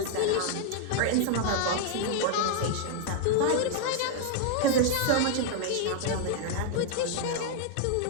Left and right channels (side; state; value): both; different; correlation 0.00